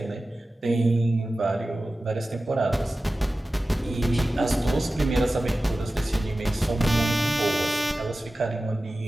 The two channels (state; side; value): normal; both; correlation 0.95